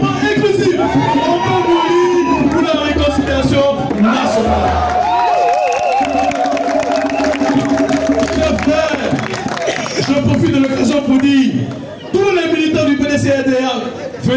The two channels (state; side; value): identical; both; correlation 1.00